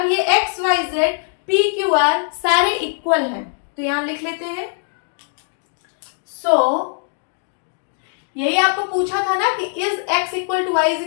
ये x, y, z, p, q, r सारे इक्वल हैं। तो यहाँ लिख लेते हैं। यही आपको पूछा था ना कि is x equal to Y is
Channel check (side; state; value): right; silent; digital silence